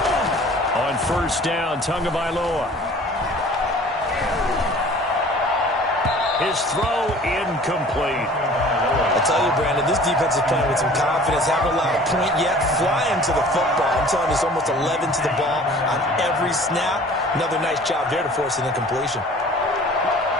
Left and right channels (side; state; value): both; normal; correlation 0.47